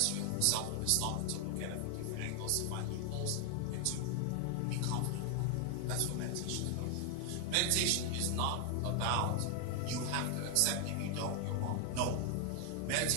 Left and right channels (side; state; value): both; different; correlation 0.00